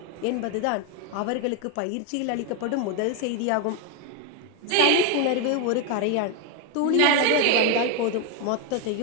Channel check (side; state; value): both; different; correlation 0.01